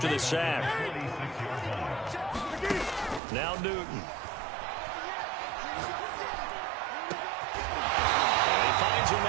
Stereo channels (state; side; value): drops out; left; at 3.2 s